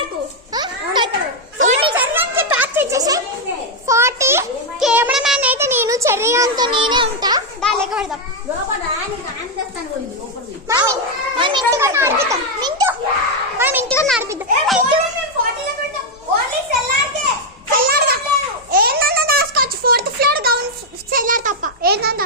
40. కెమెరామ్యాన్ అయితే నేను, చెర్రీగాంతో నేనే ఉంటా. దాని లెక్క పెడతాం. ఇంటిగా నడిపిద్దాం. ఏందన్నా దాచుకోవచ్చు. 4th ఫ్లోర్ గౌన్ సెల్లార్ తప్ప ఏందన్నా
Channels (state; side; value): normal; both; correlation 0.01